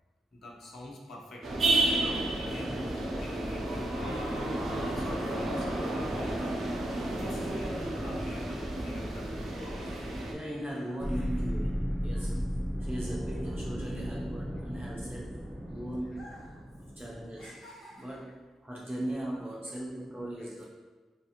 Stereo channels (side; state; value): both; normal; correlation 0.86